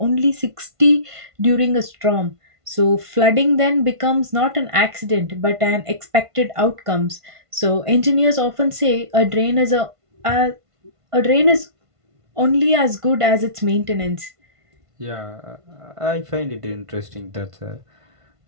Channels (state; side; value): late; left; 1.5 ms